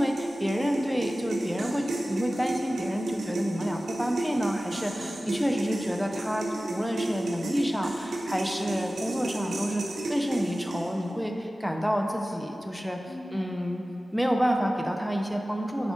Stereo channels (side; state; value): both; normal; correlation 0.96